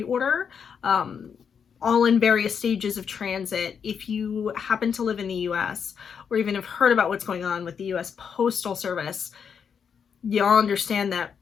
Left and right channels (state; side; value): quieter; right; 7.0 dB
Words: all in various stages of transit. If you happen to live in the US or even have heard about what's going on with the US Postal Service, y'all understand that